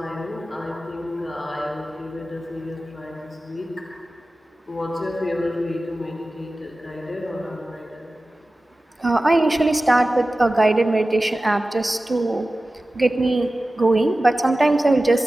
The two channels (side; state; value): both; normal; correlation 0.96